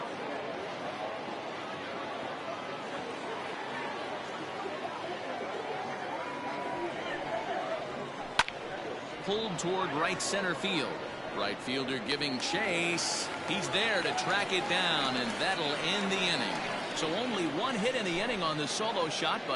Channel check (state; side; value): identical; both; correlation 1.00